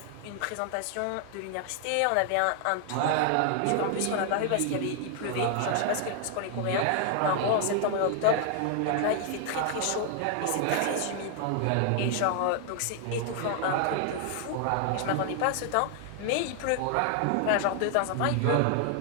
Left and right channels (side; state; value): both; different; correlation 0.00